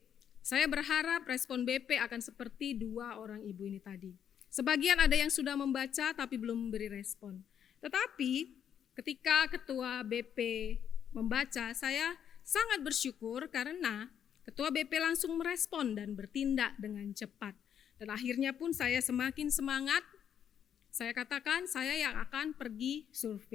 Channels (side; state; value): right; quieter; 8.8 dB